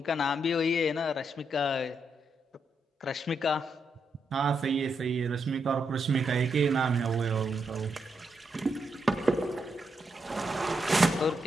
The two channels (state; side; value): normal; both; correlation 0.81